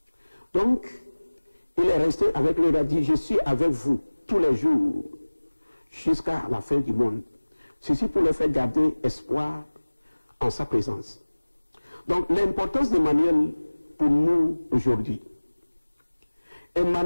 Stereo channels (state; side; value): inverted; both; correlation -1.00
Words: Donc, il est resté avec lui, il a dit, je suis avec vous tous les jours jusqu'à la fin du monde. Ceci pour leur faire garder espoir en sa présence. Donc, l'importance d'Emmanuel pour nous aujourd'hui.